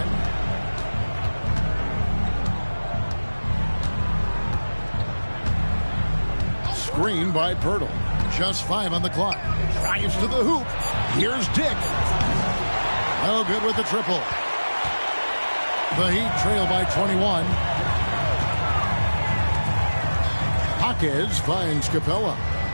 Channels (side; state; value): both; inverted; correlation -1.00